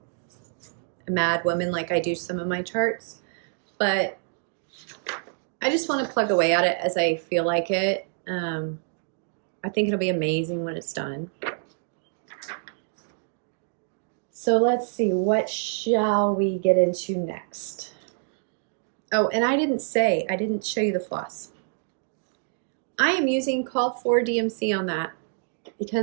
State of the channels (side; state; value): left; silent; digital silence